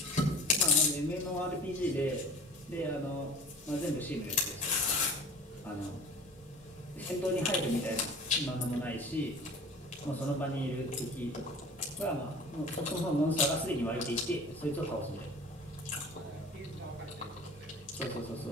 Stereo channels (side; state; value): both; normal; correlation 0.42